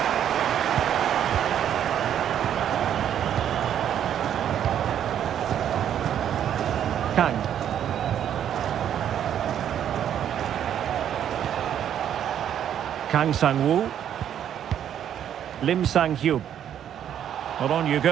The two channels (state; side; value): quieter; left; 9.8 dB